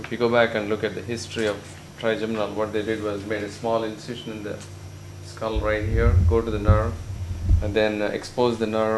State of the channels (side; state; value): both; identical; correlation 1.00